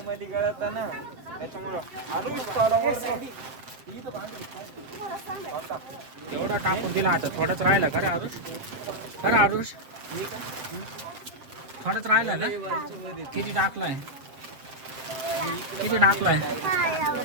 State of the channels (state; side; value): late; left; 7.6 ms